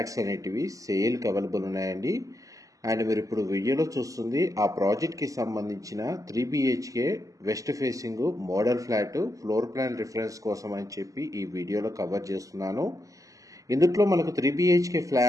అనేటివి సేల్ కి అవైలబుల్ ఉన్నాయండి. అండ్ మీరు ఇప్పుడు వీడియోలో చూస్తుంది ఆ ప్రాజెక్ట్ కి సంబంధించిన 3 BHK west facing model flat floor plan reference కోసం అని చెప్పి ఈ వీడియోలో కవర్ చేస్తున్నాను. ఇందులో మనకు 3 BHK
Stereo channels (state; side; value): late; left; 0.16 ms